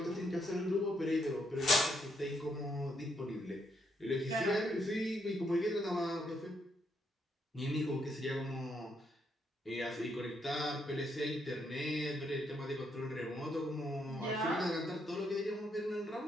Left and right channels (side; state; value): both; normal; correlation 0.76